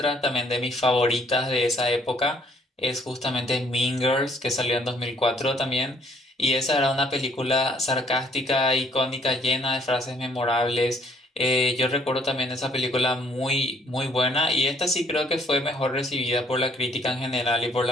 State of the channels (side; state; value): both; normal; correlation 0.63